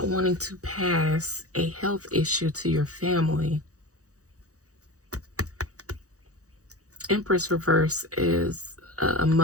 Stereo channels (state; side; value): late; left; 0.66 ms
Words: wanting to pass a health issue to your family. Empress reverse is a